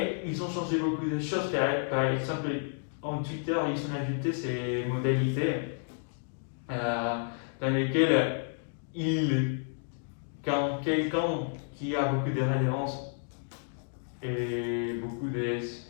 ils ont changé beaucoup de choses. Par exemple, en Twitter, ils ont ajouté ces modalités dans lesquelles quand quelqu'un qui a beaucoup de résonance et beaucoup de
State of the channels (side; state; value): right; silent; digital silence